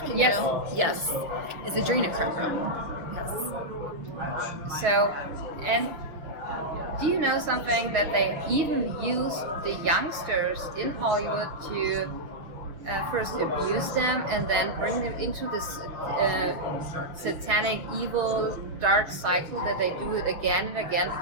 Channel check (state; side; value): late; left; 6.3 ms